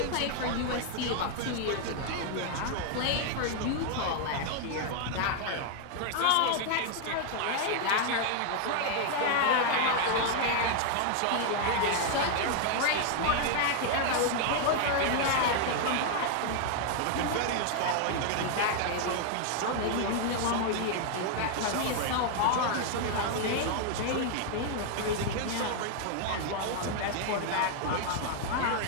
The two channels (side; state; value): both; different; correlation 0.00